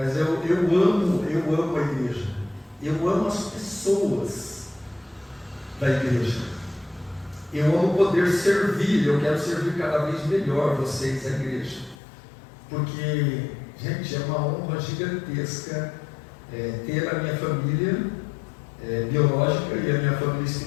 eu amo a igreja, eu amo as pessoas da igreja, eu amo poder servir, eu quero servir cada vez melhor vocês, a igreja, porque, gente, é uma honra gigantesca ter a minha família biológica e a minha família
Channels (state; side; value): drops out; right; at 12.0 s